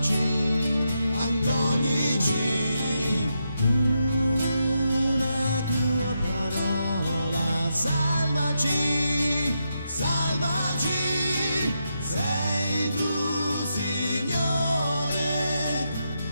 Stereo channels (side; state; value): both; inverted; correlation -0.84